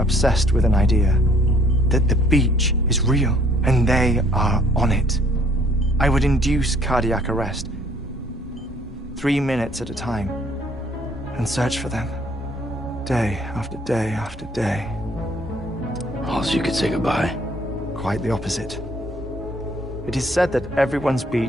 with an idea that the beach is real and they are on it. I would induce cardiac arrest, 3 minutes at a time, and search for them, day after day after day. Also, you could say goodbye. Quite the opposite. It is said that everyone's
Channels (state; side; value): normal; both; correlation 0.61